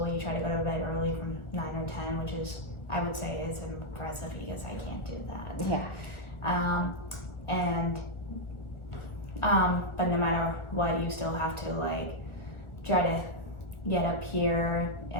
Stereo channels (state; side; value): late; right; 1.4 ms